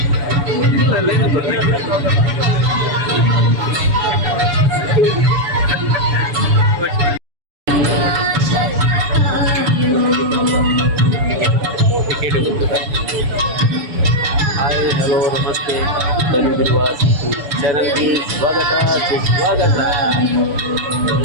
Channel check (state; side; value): late; left; 7.0 ms